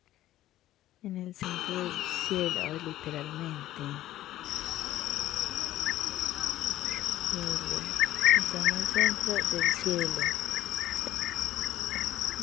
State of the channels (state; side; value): quieter; right; 14.2 dB